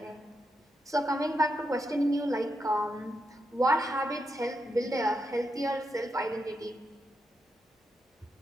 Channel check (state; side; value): normal; both; correlation 0.84